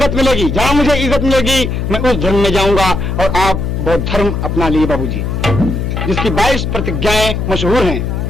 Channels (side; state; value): left; noise; hum, 2 dB below the sound